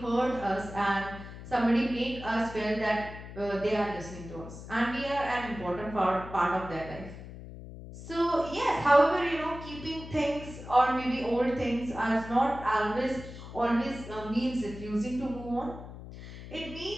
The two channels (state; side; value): noise; left; hum, 13 dB below the sound